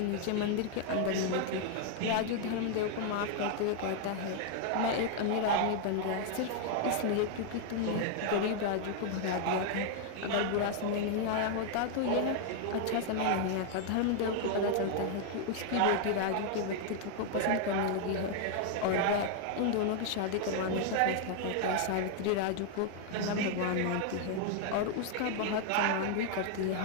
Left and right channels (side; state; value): both; different; correlation 0.00